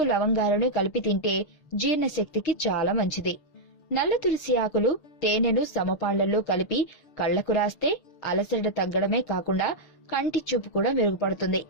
లవంగాలను కలిపి తింటే జీర్ణశక్తికి చాలా మంచిది. నల్ల తులసి ఆకులు తేనెను సమపాళ్లలో కలిపి కళ్లకు రాస్తే అలసట తగ్గడమే కాకుండా కంటి చూపు కూడా మెరుగుపడుతుంది.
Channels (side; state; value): right; late; 6.6 ms